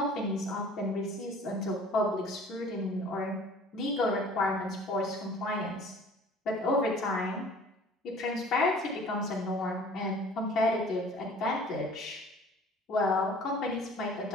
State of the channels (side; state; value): both; normal; correlation 0.49